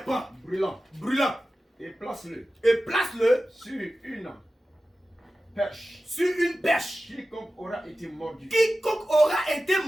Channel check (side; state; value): both; normal; correlation 0.94